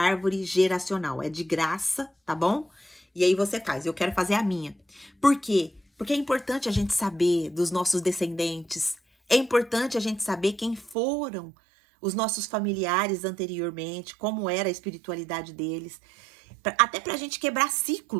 geracional. É de graça, tá bom? E aí você faz. Eu quero fazer a minha. Por quê? Porque é importante a gente saber dos nossos descendentes. É importante a gente saber quem foram os nossos familiares anteriormente, como era a espiritualidade deles. Até pra gente quebrar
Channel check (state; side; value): drops out; left; at 11.0 s